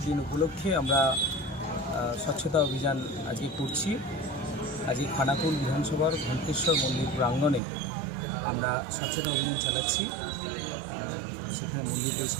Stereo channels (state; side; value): drops out; left; at 7.6 s